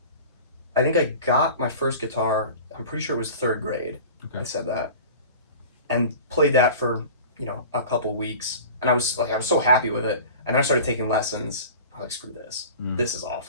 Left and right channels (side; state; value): both; inverted; correlation -0.38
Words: I think I got my first guitar, I'm pretty sure it was 3rd grade. Okay. I said that. And played that for, a couple weeks. And I was so happy with it. And then I started taking lessons. I was like, screw this. This is